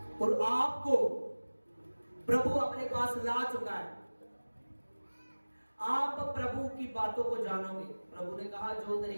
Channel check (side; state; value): both; inverted; correlation -1.00